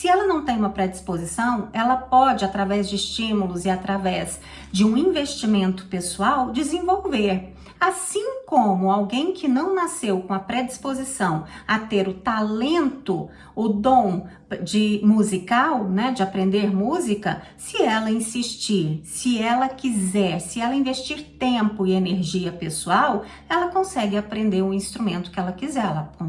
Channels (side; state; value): both; identical; correlation 1.00